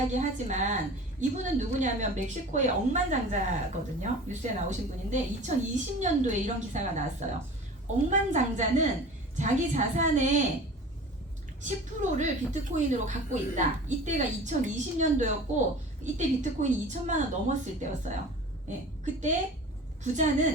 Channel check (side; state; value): both; normal; correlation 0.39